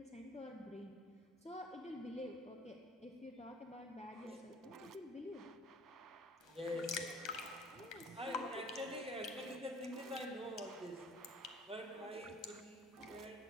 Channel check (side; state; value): both; normal; correlation 0.51